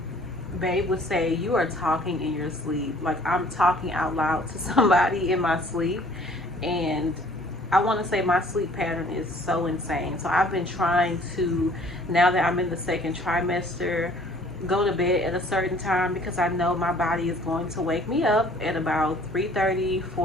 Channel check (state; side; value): normal; both; correlation 0.55